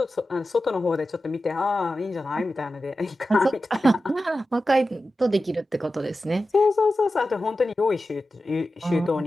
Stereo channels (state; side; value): normal; both; correlation 0.93